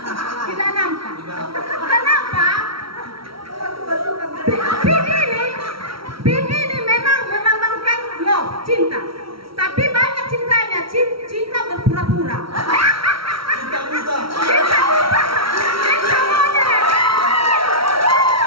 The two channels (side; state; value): left; late; 0.75 ms